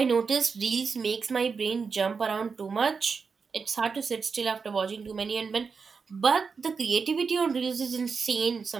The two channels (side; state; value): left; quieter; 5.3 dB